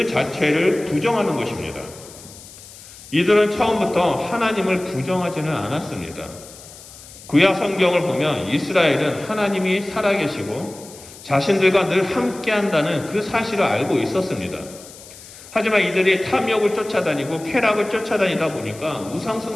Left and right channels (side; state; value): left; noise; hiss, 18 dB below the sound